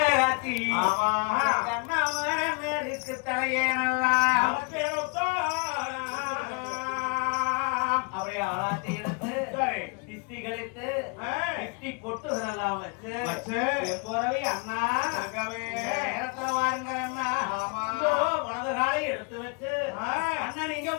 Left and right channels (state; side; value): quieter; right; 33.5 dB